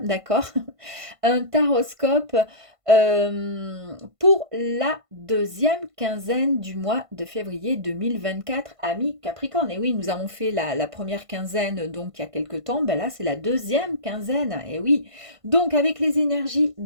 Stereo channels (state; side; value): late; left; 1.5 ms